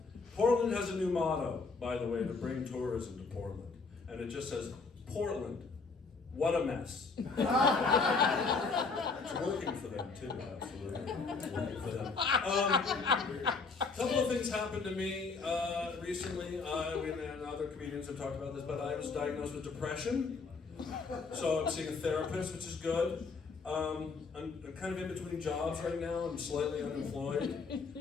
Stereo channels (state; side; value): quieter; right; 4.5 dB